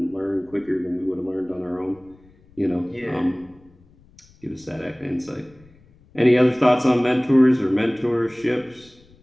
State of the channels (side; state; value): left; noise; rumble, 28 dB below the sound